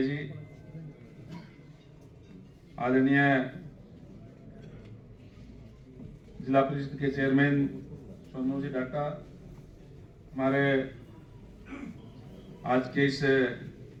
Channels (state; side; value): identical; both; correlation 1.00